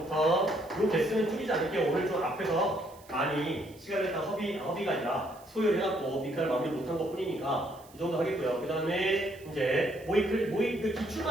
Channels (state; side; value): noise; right; hiss, 25 dB below the sound